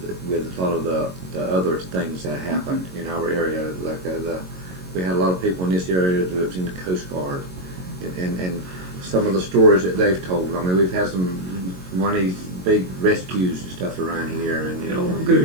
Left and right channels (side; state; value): left; late; 22 ms